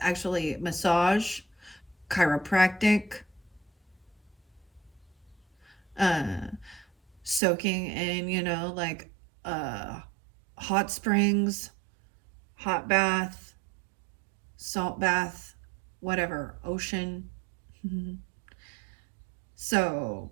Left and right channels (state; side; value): drops out; left; at 7.4 s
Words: actually massage, chiropractic, uh soaking in, like uh hot springs, hot bath, salt bath, whatever, ocean. So